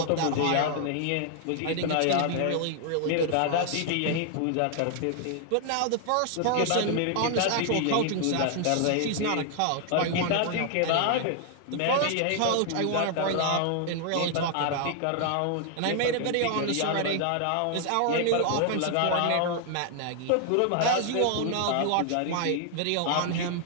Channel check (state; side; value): different; both; correlation 0.00